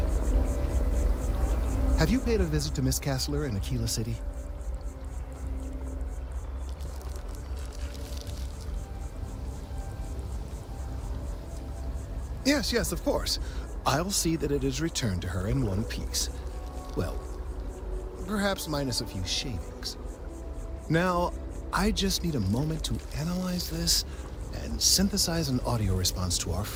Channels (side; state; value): both; identical; correlation 1.00